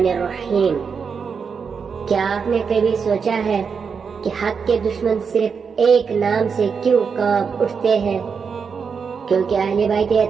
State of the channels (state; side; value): quieter; left; 5.9 dB